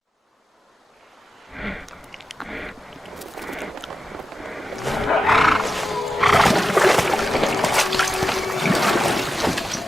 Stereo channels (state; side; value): normal; both; correlation 0.92